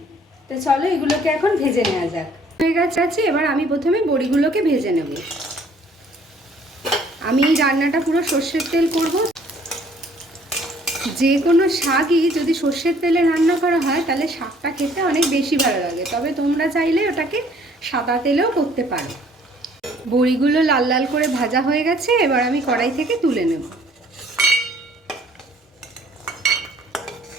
তো চলো এগুলোকে এখন ভেজে নেওয়া যাক। হয়ে গেছে, এবার আমি প্রথমে বড়িগুলোকে ভেজে নেব। আমি এই রান্নাটা পুরো সর্ষের তেল করব। যে কোনো শাকই যদি সর্ষের তেলে রান্না করা হয় তাহলে শাকটা খেতে অনেক বেশি ভালো লাগে, তবে তোমরা চাইলে ওটাকে সাদা তেলেও করতে পারো। বড়িগুলো লাল লাল করে ভাজা হয়ে গেছে, এবার আমি কড়াই থেকে তুলে নেব।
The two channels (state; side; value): normal; both; correlation 0.59